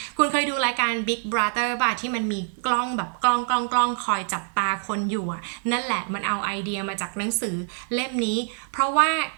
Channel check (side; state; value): left; silent; 62 dB below the other